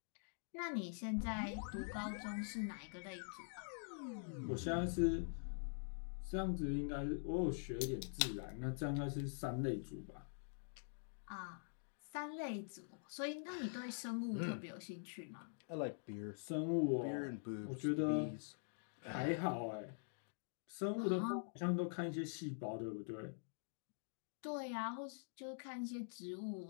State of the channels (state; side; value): silent; right; digital silence